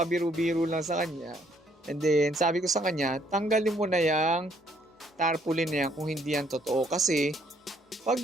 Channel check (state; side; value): normal; both; correlation 0.67